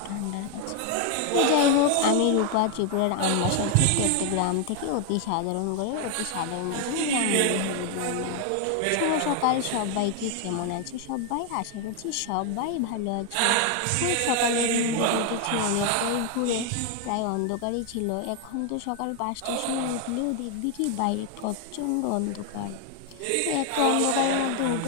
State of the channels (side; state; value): both; different; correlation 0.00